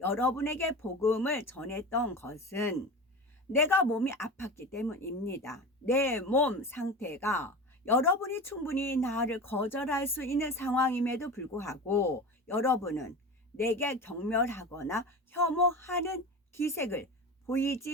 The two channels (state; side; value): normal; both; correlation 0.30